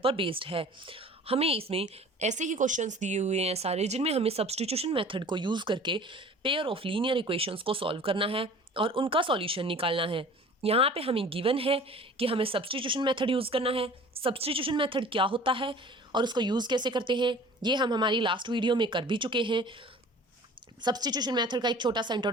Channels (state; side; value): normal; both; correlation 0.45